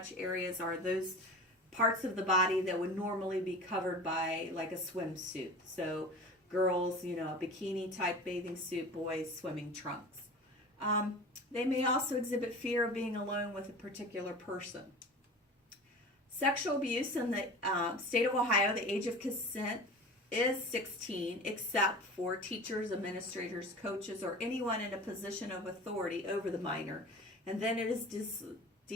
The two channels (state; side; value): normal; both; correlation 0.36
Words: areas are those parts of the body that would normally be covered by like a swimsuit. So girls, a bikini type bathing suit, boys, swimming trunks. They may also exhibit fear of being alone with a particular person. Sexual abuse in the state of Ohio, the age of consent is 16, except for teachers, administrators, coaches, or anyone in a position of authority over the minor. And then it is